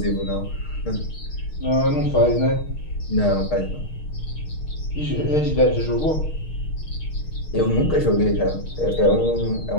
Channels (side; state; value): right; late; 6.5 ms